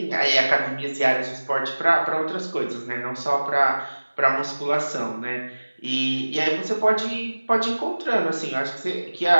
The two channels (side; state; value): both; inverted; correlation -1.00